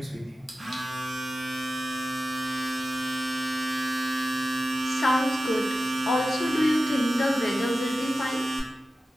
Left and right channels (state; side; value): normal; both; correlation 0.94